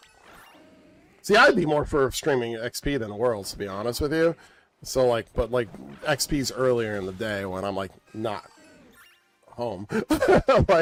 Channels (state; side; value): identical; both; correlation 1.00